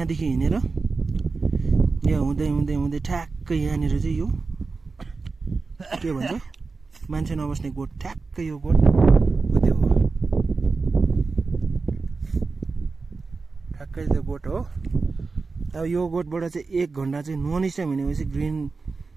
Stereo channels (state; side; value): quieter; left; 4.2 dB